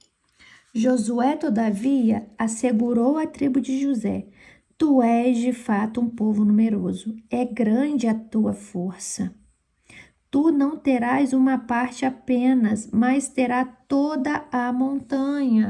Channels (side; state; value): both; identical; correlation 1.00